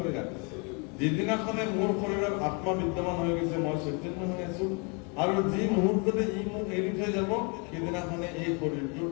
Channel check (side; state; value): right; quieter; 34.0 dB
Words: ৰাখিছে যিদিনাখনে মোৰ শৰীৰত আত্মা বিদ্যমান হৈ গৈছে মই চৈতন্য হৈ আছো আৰু যি মুহূৰ্ততে ই মোক এৰি থৈ যাব সেইদিনাখনে এই শৰীৰটোৰ